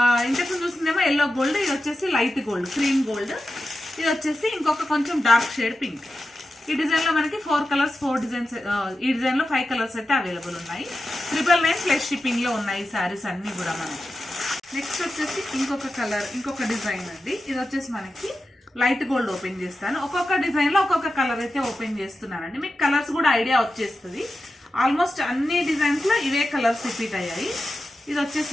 ఇంతకు చూసిందేమో ఎల్లో గోల్డ్, ఇది వచ్చేసి లైట్ గోల్డ్ క్రీమ్ గోల్డ్, ఇది వచ్చేసి ఇంకొక కొంచెం డార్క్ షేడ్ పింక్. ఈ డిజైన్లో మనకి 4 కలర్స్ 4 డిజైన్స్, ఈ డిజైన్లో 5 కలర్స్ అయితే అవైలబుల్ ఉన్నాయి. 999+ షిప్పింగ్లో ఉన్నాయి ఈ శారీస్ అన్నీ కూడా మనకి. నెక్స్ట్ వచ్చేసి ఇంకొక కలర్, ఇంకొక డిజైన్ అండి. ఇది వచ్చేసి మనకి లైట్ గోల్డ్ ఓపెన్ చేస్తాను. ఒక్కొక్క డిజైన్లో ఒక్కొక్క కలర్ అయితే ఓపెన్ చేస్తున్నానండి. మీకు కలర్స్ కూడా ఐడియా వచ్చేస్తుంది. ఆల్మోస్ట్ అన్ని డిజైన్స్లో ఇవే కలర్స్ రిపీట్ అయ్యాయి. ఇది వచ్చేసి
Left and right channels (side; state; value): both; normal; correlation 0.91